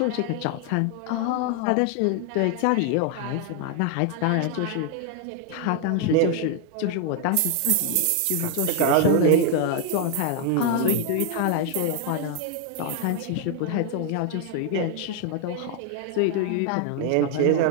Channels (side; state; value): both; different; correlation 0.00